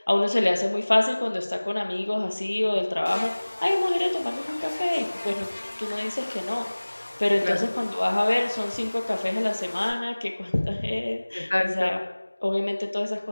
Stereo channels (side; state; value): both; inverted; correlation -1.00